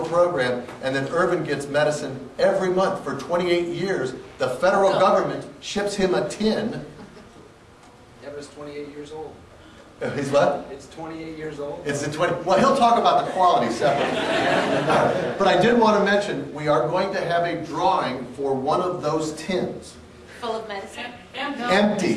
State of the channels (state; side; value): identical; both; correlation 1.00